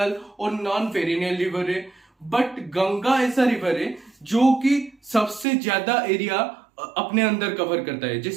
और नॉन पेरिनियल रिवर है, बट गंगा ऐसा रिवर है जो कि सबसे ज्यादा एरिया अपने अंदर कवर करता है।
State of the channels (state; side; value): drops out; left; at 5.5 s